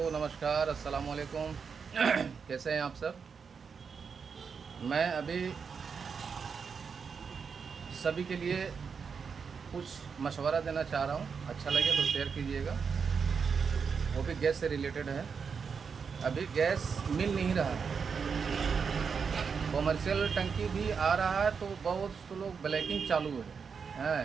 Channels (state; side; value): quieter; left; 5.9 dB